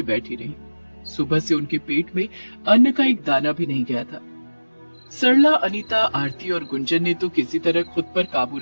बैठी रहीं। सुबह से उनके पेट में अन्न का एक दाना भी नहीं गया था। सरला, अनीता, आरती और गुंजन ने तो किसी तरह खुद पर काबू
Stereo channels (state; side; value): inverted; both; correlation -1.00